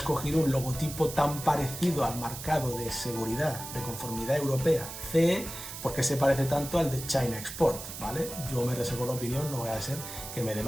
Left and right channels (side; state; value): right; noise; hiss, 10 dB below the sound